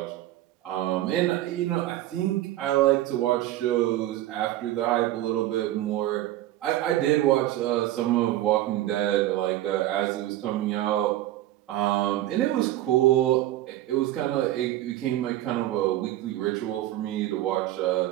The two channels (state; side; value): quieter; left; 14.6 dB